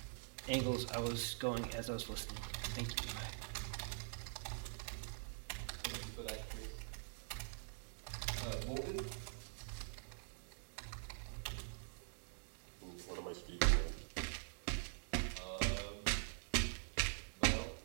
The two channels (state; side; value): silent; left; digital silence